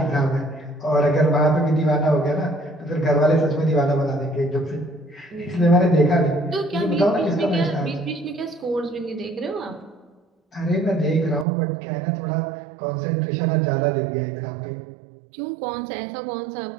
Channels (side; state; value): left; drops out; at 11.5 s